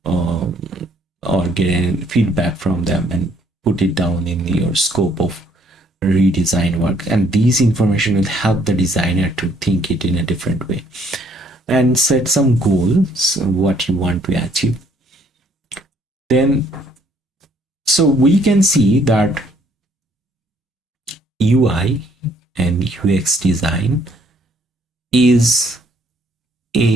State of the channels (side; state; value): both; normal; correlation 0.65